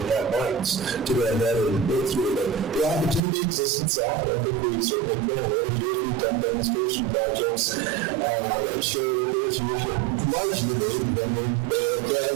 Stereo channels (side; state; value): left; drops out; at 3.2 s